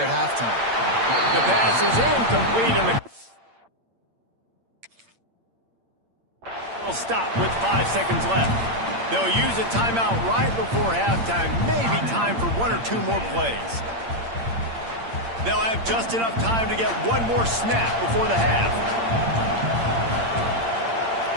halftime. The pass is incomplete, and the will stop with 5 seconds left. They'll use a timeout right before halftime. Maybe time for 1 or 2 more plays. They'll have just enough time to get one more snap before the half.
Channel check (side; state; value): left; late; 8.7 ms